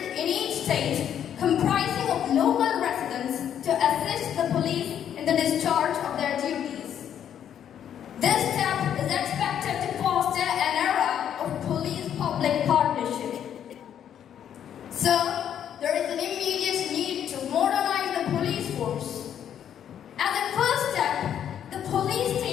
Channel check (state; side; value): quieter; right; 9.5 dB